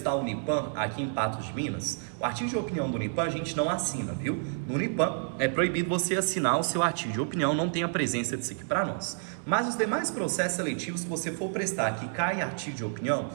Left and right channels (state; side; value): silent; left; digital silence